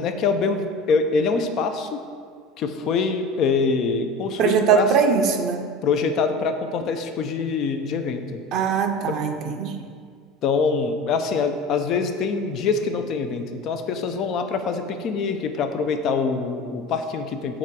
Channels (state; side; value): normal; both; correlation 0.33